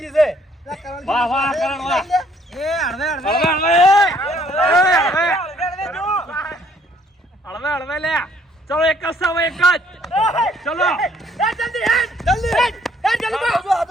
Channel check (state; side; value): normal; both; correlation 0.64